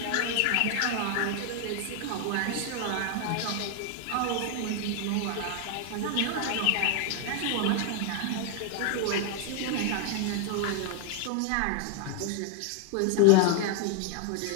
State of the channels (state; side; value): different; both; correlation 0.00